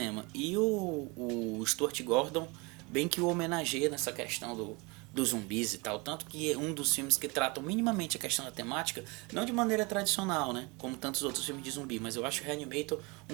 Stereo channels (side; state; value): left; quieter; 27.6 dB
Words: E o Stuart Gordon bem que o homenageia nessa questão dos zumbis e tal, tanto que é um dos filmes que tratam minimamente a questão da temática, não de maneira tradicional, né, como tantos outros filmes de zumbi, mas eu acho o Reanimator